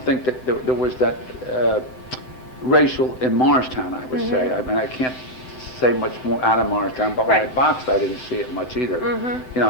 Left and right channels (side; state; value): right; late; 7.8 ms